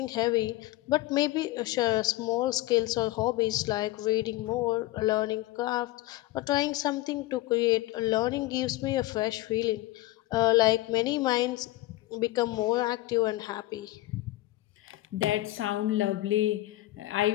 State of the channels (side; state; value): right; quieter; 17.5 dB